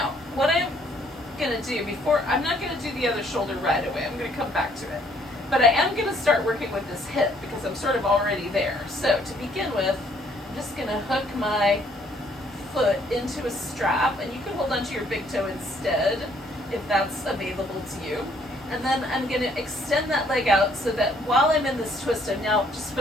what I'm going to do I'm not going to do the other shoulder right away. I'm going to come back to it. But I am going to start working with this hip because I'm sort of already there. So, to begin with, I'm just going to hook my foot into a strap, and you can hold onto your big toe instead if that's available to you. And then I'm going to extend that leg out so that while I'm in this twist, I'm now just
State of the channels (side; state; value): both; normal; correlation 0.65